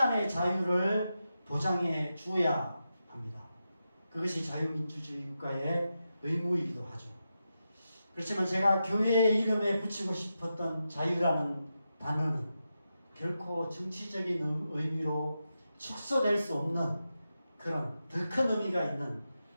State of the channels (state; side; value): inverted; both; correlation -0.89